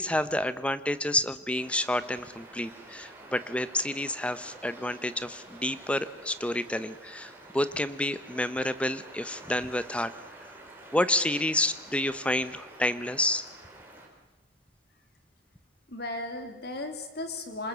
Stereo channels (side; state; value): both; normal; correlation 0.45